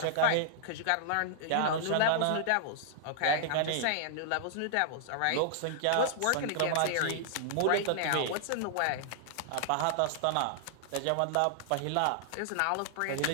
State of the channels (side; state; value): both; different; correlation -0.01